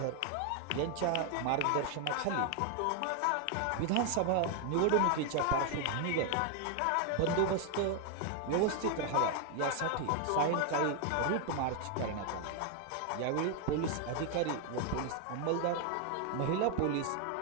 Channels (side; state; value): both; different; correlation 0.01